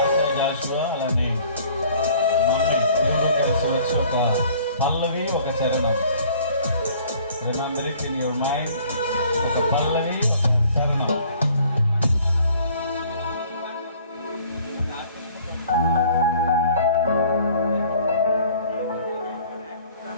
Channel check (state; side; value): inverted; both; correlation -0.54